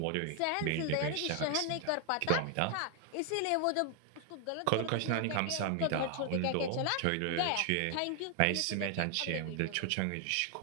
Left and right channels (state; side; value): different; both; correlation 0.00